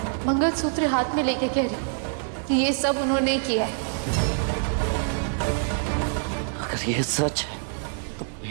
मंगलसूत्र हाथ में लेके कह रही कि ये सब उन्होंने किया है। अगर ये सच है तो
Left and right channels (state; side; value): silent; left; digital silence